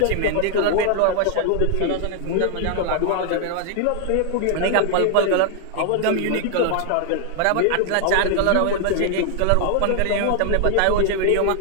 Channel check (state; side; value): different; both; correlation 0.00